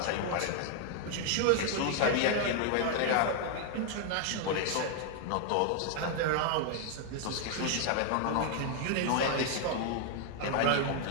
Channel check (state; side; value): different; both; correlation 0.00